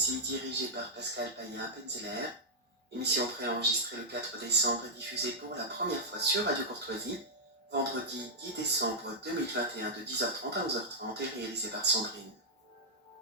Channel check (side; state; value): both; normal; correlation -0.08